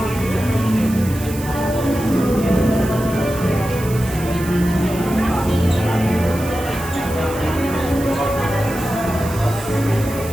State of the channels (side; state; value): right; noise; hiss, 14 dB below the sound